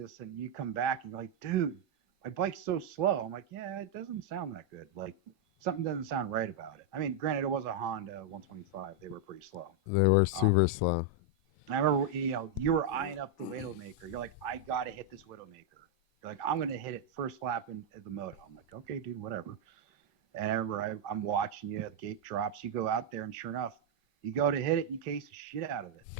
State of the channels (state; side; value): normal; both; correlation -0.01